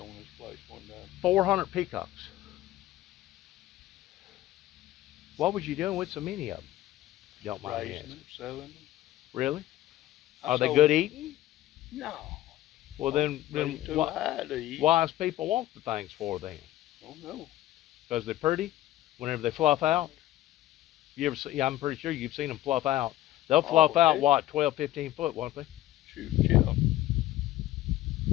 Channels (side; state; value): right; quieter; 14.8 dB